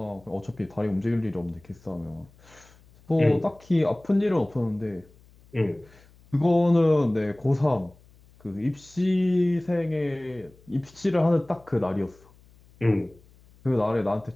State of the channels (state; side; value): noise; left; hum, 27 dB below the sound